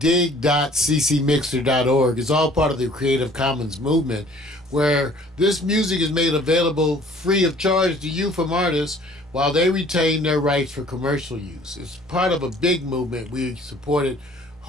It's all part of the Creative Commons movement, where this music is made available free of charge to you from artists while they retain their rights for commercial use. It's part of a big movement. We support it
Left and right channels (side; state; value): both; normal; correlation 0.54